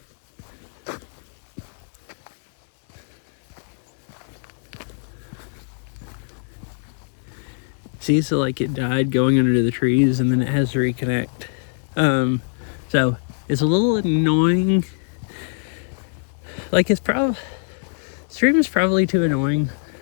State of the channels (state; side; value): silent; right; 63 dB below the other